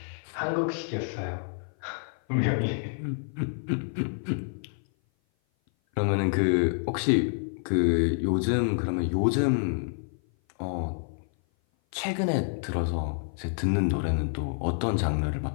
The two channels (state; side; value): silent; right; 56 dB below the other